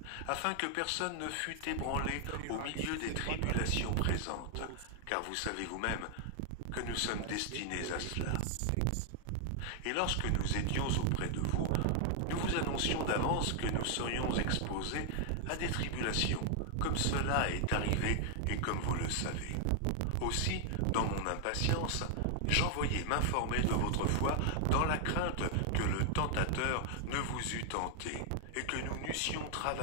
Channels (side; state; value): both; different; correlation 0.00